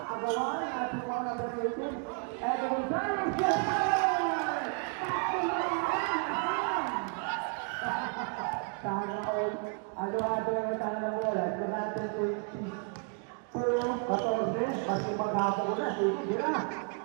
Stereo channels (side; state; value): left; quieter; 39.7 dB